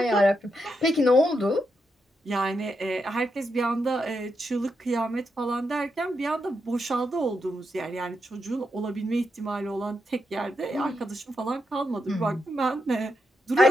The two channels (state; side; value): normal; both; correlation 0.83